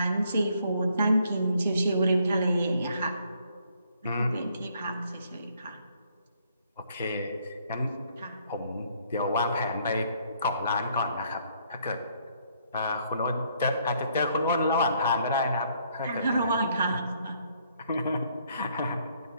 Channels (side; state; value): both; inverted; correlation -0.67